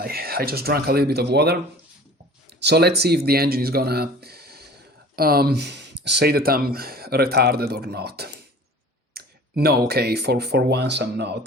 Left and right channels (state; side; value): normal; both; correlation 0.44